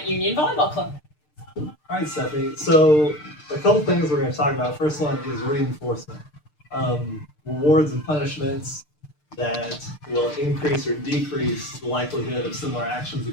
Union Volleyball Club. All right, Stephanie. So a couple things we're going to talk about. First one is reinforcement, rewards and punishments that will increase or decrease the likelihood of similar actions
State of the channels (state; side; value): late; right; 6.6 ms